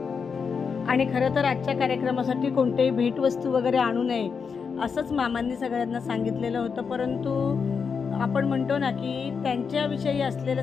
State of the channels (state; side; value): quieter; right; 5.8 dB